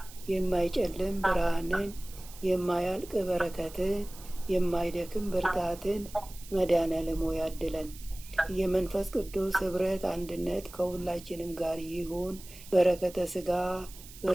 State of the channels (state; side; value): noise; right; hiss, 18 dB below the sound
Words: የማይጨልም ብርሃንን፣ የማያልቅ በረከትን፣ የማይደክም ብርታትን መድኃኔዓለም ሆይ ያድለን። የመንፈስ ቅዱስ ኅብረት አንድነት ከሁላችንም ጋር ይሁን። በረከተ ሥጋ